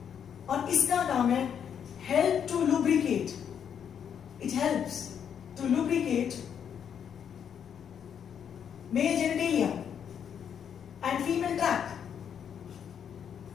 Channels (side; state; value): right; quieter; 8.2 dB